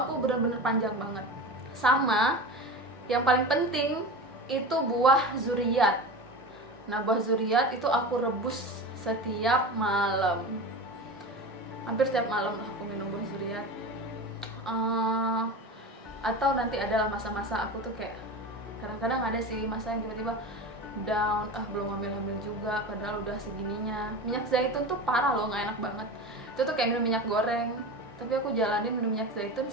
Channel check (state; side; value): normal; both; correlation 0.28